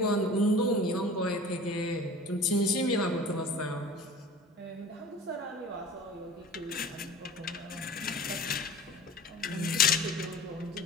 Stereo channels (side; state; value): both; normal; correlation 0.40